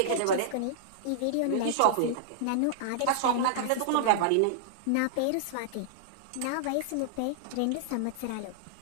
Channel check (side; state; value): both; different; correlation -0.01